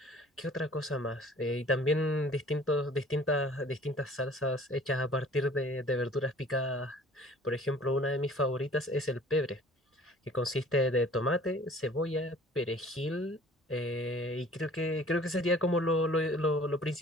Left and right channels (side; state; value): both; normal; correlation 0.50